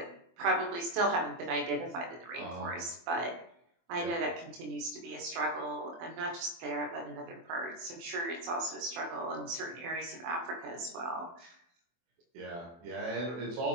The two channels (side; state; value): left; late; 24 ms